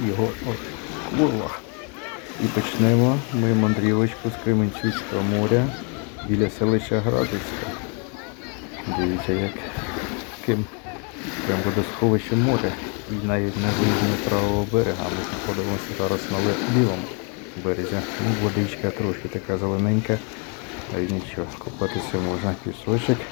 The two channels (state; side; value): quieter; right; 36.5 dB